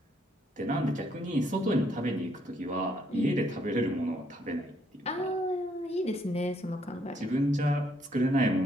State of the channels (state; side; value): normal; both; correlation 0.71